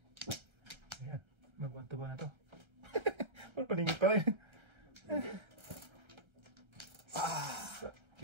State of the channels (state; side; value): late; left; 1.3 ms